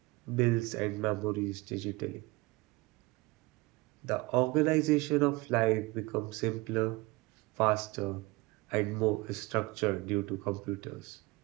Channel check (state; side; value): quieter; left; 23.5 dB